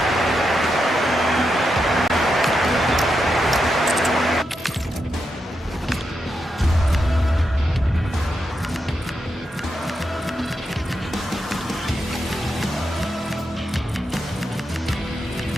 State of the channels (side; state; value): both; normal; correlation 0.85